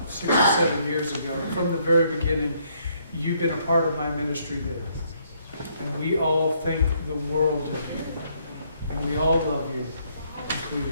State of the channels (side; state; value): both; inverted; correlation -0.70